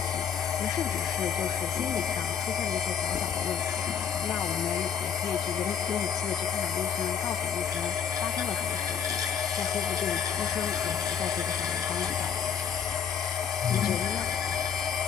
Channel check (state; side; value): quieter; right; 7.5 dB